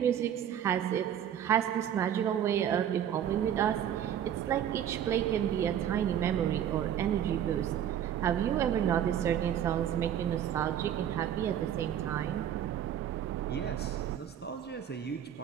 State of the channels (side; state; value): left; quieter; 9.9 dB